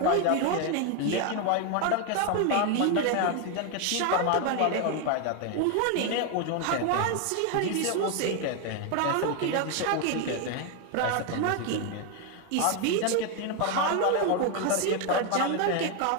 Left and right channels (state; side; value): different; both; correlation 0.01